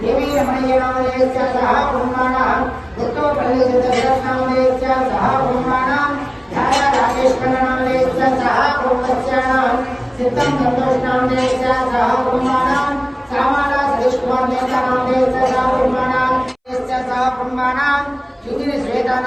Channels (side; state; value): both; identical; correlation 1.00